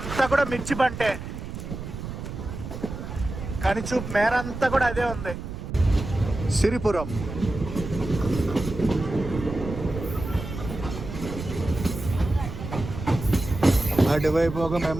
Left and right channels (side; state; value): right; noise; rumble, 8 dB below the sound